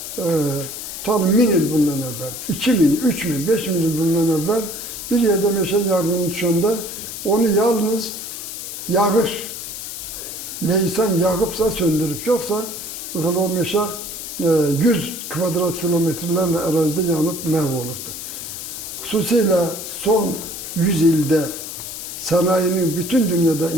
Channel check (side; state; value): left; noise; hiss, 8 dB below the sound